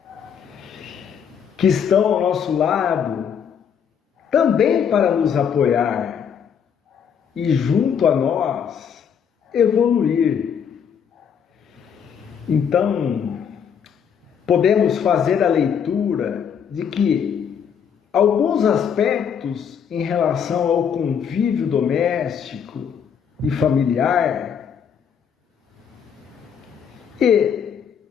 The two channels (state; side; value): quieter; right; 7.6 dB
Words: que estão ao nosso lado também para nos apoiar e junto a nós evoluir. Então, podemos fazer a leitura de que alguns aspectos em relação ao convívio doméstico e familiar, e